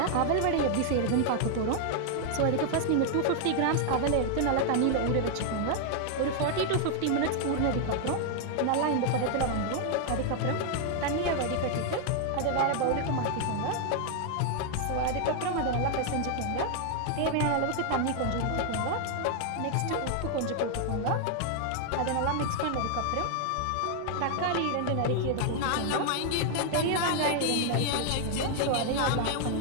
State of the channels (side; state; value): both; different; correlation 0.00